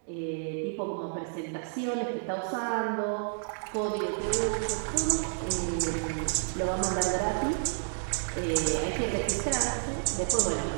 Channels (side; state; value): left; silent; digital silence